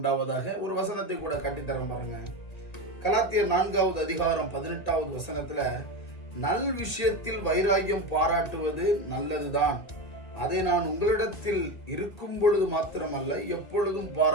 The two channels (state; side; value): late; right; 2.0 ms